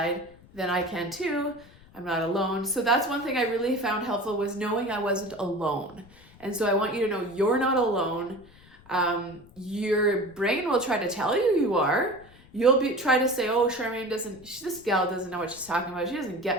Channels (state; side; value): noise; left; rumble, 24 dB below the sound